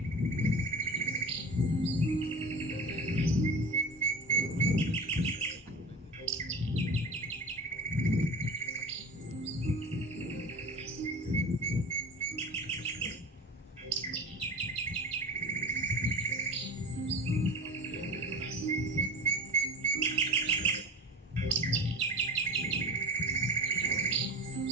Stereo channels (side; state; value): both; normal; correlation 0.32